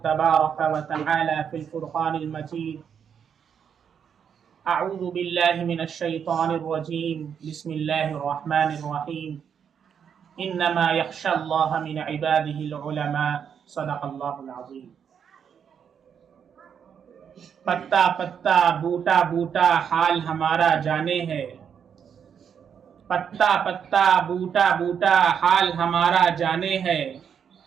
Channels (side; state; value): left; quieter; 7.7 dB